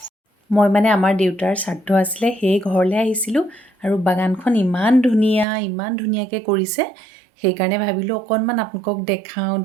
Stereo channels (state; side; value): drops out; left; at 5.5 s